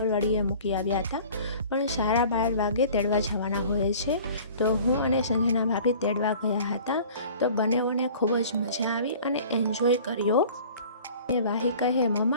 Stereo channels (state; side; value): inverted; both; correlation -0.46